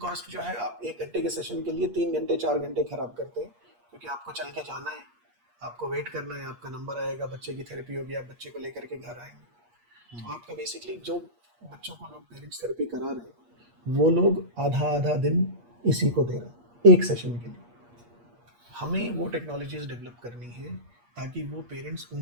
जो है, आप 1 घंटे के सेशन के लिए 3 घंटे 4 घंटे खराब करते हैं, क्योंकि आपको चल के जाना है, आपको वेट करना है, आपका नंबर आएगा, बच्चे की थेरेपी होगी, आप बच्चे को लेकर के घर आएंगे। तो आपका बेसिकली जो बच्चों को लोग पेरेंट्स थेरेपी करा रहे हैं, वो लोग आधा आधा दिन इसी को दे रहे हैं एक सेशन के लिए। हमें वो टेक्नोलॉजीज डेवलप करनी है ताकि वो पेरेंट्स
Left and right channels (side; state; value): left; late; 8.4 ms